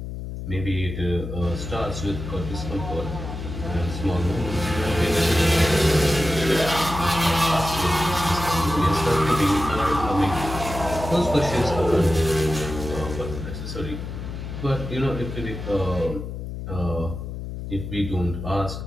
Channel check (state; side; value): noise; left; hum, 7 dB below the sound